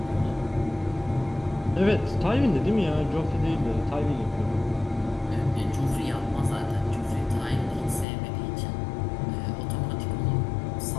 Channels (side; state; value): right; drops out; at 8.1 s